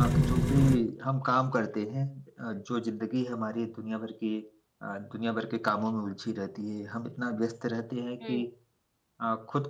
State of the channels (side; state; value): both; identical; correlation 1.00